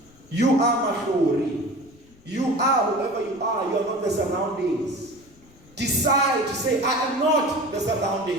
You are Mahori. You are whoever you are. You are not the surroundings. Decide to say, I am not the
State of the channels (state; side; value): noise; left; rumble, 28 dB below the sound